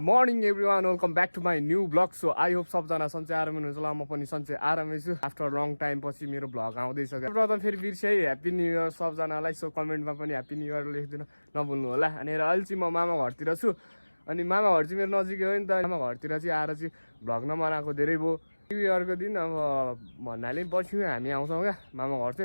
morning everyone welcome back to my new blog so I hope सबजना सन्चै आरामै हुनुहुन्छ होला म पनि सन्चै आरामै छु आफ्टर लङ टाइम पछि मेरो भ्लग आउँदैछ प्रथम फेरि बिर्सै ह्याप्पी न्यू इयर सबजनालाई सो कमेन्टमा पनि ह्याप्पी न्यू इयर लेखिदिनु नभुल्नु होला अनि अहिले चाहिँ म मामा घरतिर छु अनि मामा घर चाहिँ मेरो नजिकै हो नि त मामा घरतिर चाहिँ आएर चाहिँ भ्लग नबनाएको धेरै भयो न्यू इयरको दिन अब भन्नाले पछि हामी आउँछौँ क्या मामा घर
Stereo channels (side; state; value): both; inverted; correlation -1.00